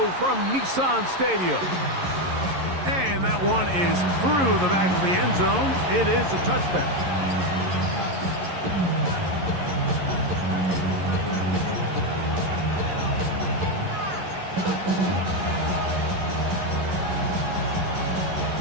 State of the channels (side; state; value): left; late; 11 ms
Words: from Nissan Stadium. And that one is through the back of the end zone. It is a touchback.